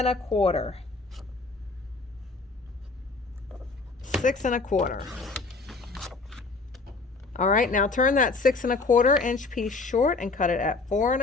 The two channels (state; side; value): quieter; right; 3.8 dB